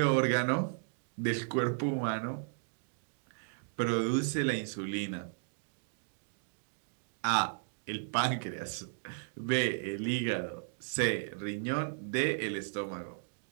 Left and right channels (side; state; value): left; silent; digital silence